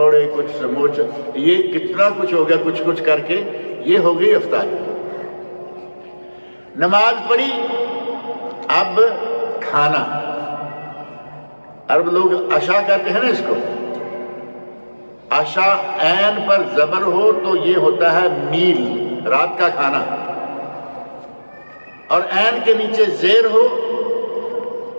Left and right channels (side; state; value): both; inverted; correlation -1.00